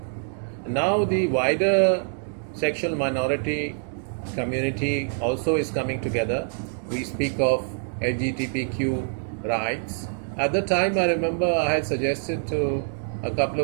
Now the wider sexual minority community also is coming together. We speak of LGBTQ rights. At the time, I remember I had suggested to a couple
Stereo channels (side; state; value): left; silent; digital silence